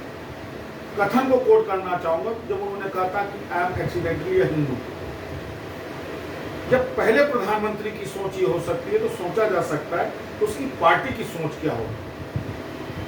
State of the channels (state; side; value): identical; both; correlation 1.00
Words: कथन को कोट करना चाहूंगा जब उन्होंने कहा था कि आई एम एक्सीडेंटली अ हिंदू। जब पहले प्रधानमंत्री की सोच ये हो सकती है तो सोचा जा सकता है तो उसकी पार्टी की सोच क्या होगी।